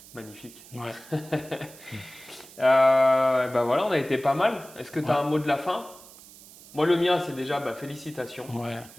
Magnifique. Ouais. Ben voilà, on a été pas mal. Est-ce que tu as un mot de la fin? Moi, le mien, c'est déjà félicitations. Ouais,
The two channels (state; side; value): noise; right; hiss, 20 dB below the sound